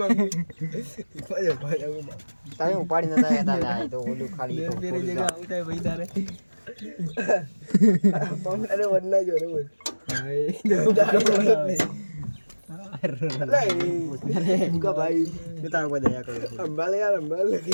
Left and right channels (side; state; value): both; inverted; correlation -1.00